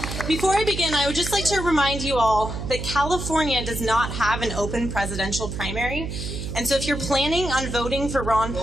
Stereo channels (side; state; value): right; noise; hum, 6 dB below the sound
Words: Before I begin, I would just like to remind you all that California does not have an open presidential primary. And so if you're planning on voting for Ron